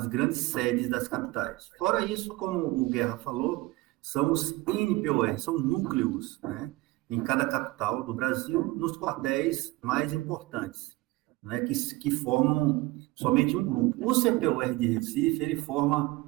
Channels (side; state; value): left; quieter; 20.4 dB